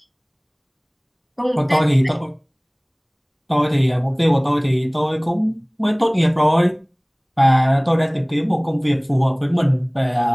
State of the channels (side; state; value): both; identical; correlation 1.00